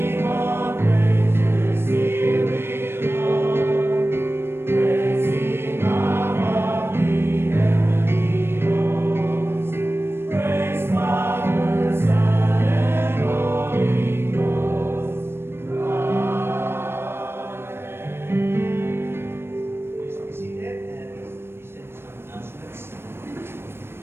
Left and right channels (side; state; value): left; late; 0.12 ms